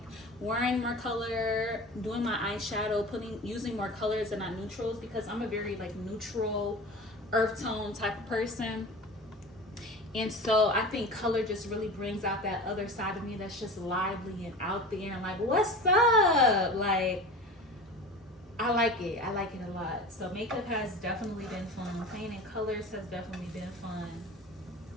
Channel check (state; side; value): normal; both; correlation 0.34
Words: wearing more color, doing my eyeshadow, using more colors and not neutrals, because I'm a very like neutral earth tone type of person. And so I think color just really brings out that other side of me that's just lively and out there and like, what's up? Like, I like it a lot. So makeup has definitely been fun. Playing in colors has definitely been fun.